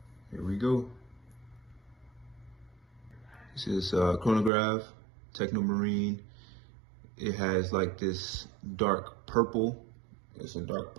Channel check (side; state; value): left; drops out; at 4.5 s